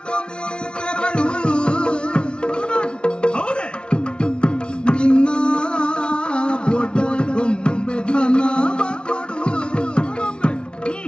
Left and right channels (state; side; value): late; right; 0.057 ms